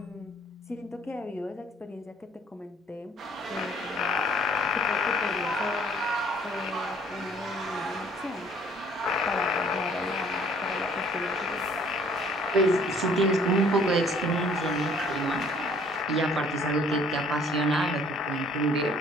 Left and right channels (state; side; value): normal; both; correlation 0.57